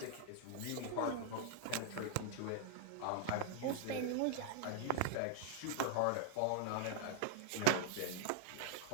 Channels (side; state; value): both; different; correlation 0.00